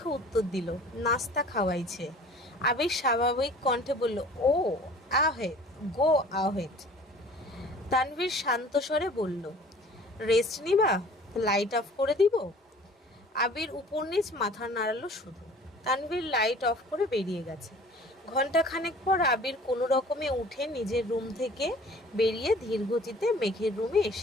উত্তর দিল, নাস্তা খাওয়াইছে। আবির স্বাভাবিক কণ্ঠে বলল, ও আহেদ, গো আহেদ। তানভীর শান্ত স্বরে বলল, রেস্ট নিবা? লাইট অফ করে দিব? আবির উপর নিচ মাথা নাড়ালো শুধু। তানভীর লাইট অফ করে বেরিয়ে গেছে। ঘণ্টাখানেক পর আবির কোনো রকমে উঠে নিজের রুম থেকে বেরিয়ে ধীর গতিতে মেঘের রুমে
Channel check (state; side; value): normal; both; correlation 0.48